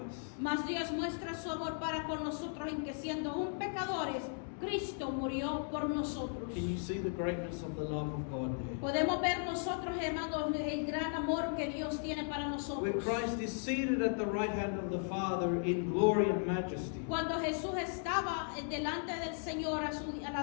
Dios muestra su amor para con nosotros en que siendo aún pecadores, Cristo murió por nosotros. Can you see the greatness of the love of God there? Podemos ver nosotros, hermanos, el gran amor que Dios tiene para Where nosotros. Christ is seated at the right hand of the Father in glory and majesty. Cuando Jesús estaba delante del Señor a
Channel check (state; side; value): silent; right; 53 dB below the other